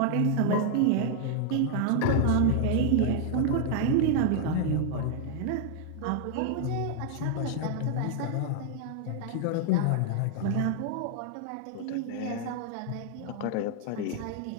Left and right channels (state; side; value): different; both; correlation 0.00